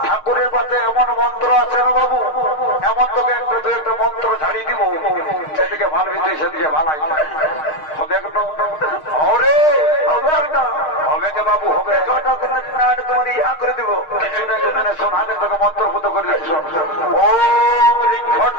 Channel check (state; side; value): late; right; 6.5 ms